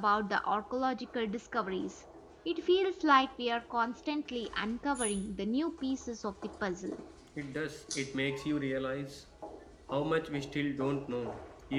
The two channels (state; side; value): identical; both; correlation 1.00